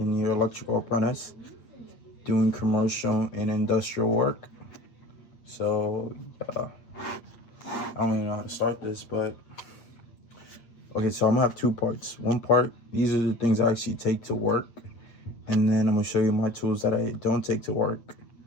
electrical apprentice doing commercial and industrial work. So, I don't even know how to start this, but okay, so I'm gonna have two parts. One part, these are the things I actually take to work, and then I'm gonna show you my tools that I don't take to work,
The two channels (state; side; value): late; right; 8.6 ms